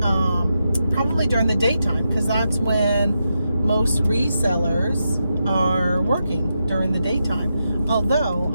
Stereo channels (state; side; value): inverted; both; correlation -0.86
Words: probably during the daytime, because that's when most resellers are working, during the daytime. Although